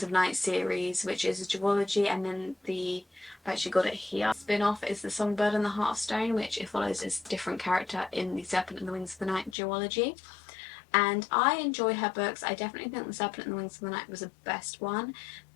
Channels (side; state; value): right; drops out; at 9.6 s